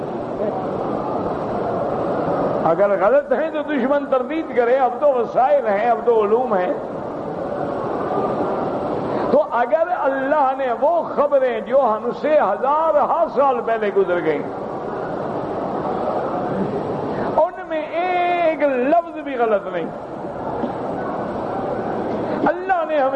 اگر غلط ہیں تو دشمن تردید کرے، اب تو وسائل ہیں، اب تو علوم ہیں. تو اگر اللہ نے وہ خبریں جو ہم سے ہزارہ سال پہلے گزر گئیں ان میں ایک لفظ بھی غلط نہیں، اللہ نے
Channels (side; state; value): both; identical; correlation 1.00